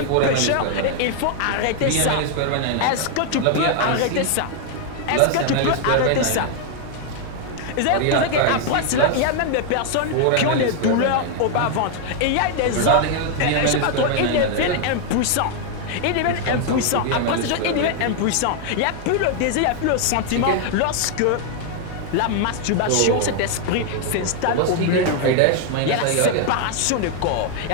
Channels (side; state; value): both; different; correlation 0.00